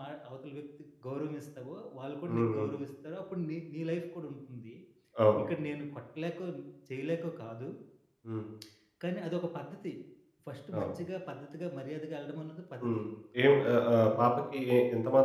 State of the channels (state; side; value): identical; both; correlation 1.00